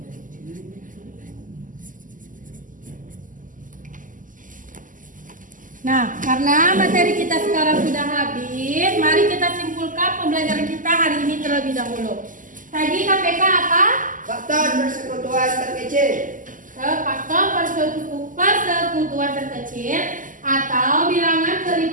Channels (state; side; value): late; left; 0.38 ms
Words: Nah, karena materi kita sekarang sudah habis, mari kita simpulkan pembelajaran kita hari ini terlebih dahulu. Tadi KPK apa? Faktor persekutuan terkecil. Faktor persekutuan terkecil atau bilangan